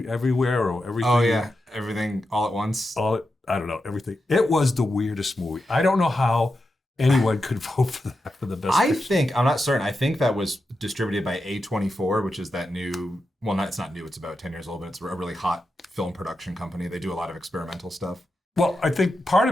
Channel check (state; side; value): normal; both; correlation 0.89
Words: or Everything. Oh, yeah. Everything All at Once. I don't know, everything. It was the weirdest movie. I don't know how anyone could vote for that for the best picture. I'm not certain. I think that was distributed by A24, which is that new, well, it's not new, it's about 10 years old, but it's a really hot film production company. They do a lot of experimental stuff. Well, I think part